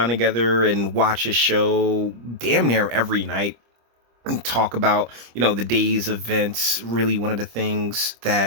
together and watch his show damn near every night and talk about the day's events. Really one of the things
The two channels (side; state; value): left; late; 25 ms